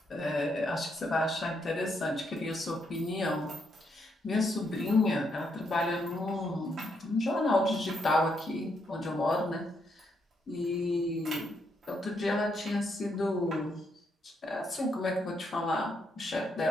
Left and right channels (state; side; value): normal; both; correlation 0.77